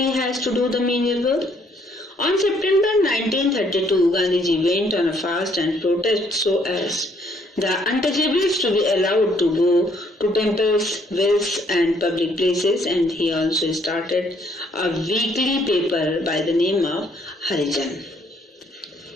has to do the menial work. On September 1932, Gandhiji went on a fast and protest so as the untouchables to be allowed to go to temples, wells and public places, and he also started a weekly paper by the name of Harijan.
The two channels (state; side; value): normal; both; correlation 0.66